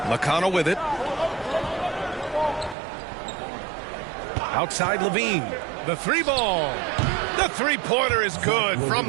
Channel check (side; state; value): left; drops out; at 2.8 s